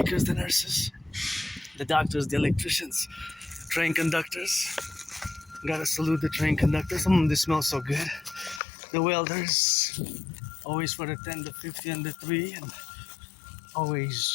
the nurses, the doctors, the electricians, train conductors. Gotta salute the train conductors. This smells so good. The welders, always for the 10, the 50, and the 3, and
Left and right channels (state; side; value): drops out; right; at 8.6 s